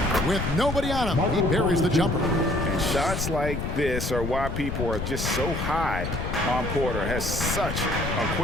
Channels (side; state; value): left; noise; rumble, 4 dB below the sound